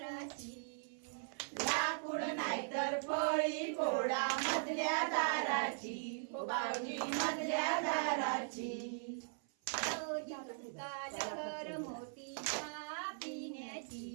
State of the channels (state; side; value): silent; left; 51 dB below the other